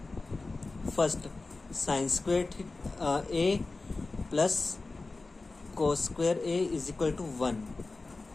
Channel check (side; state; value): right; quieter; 3.5 dB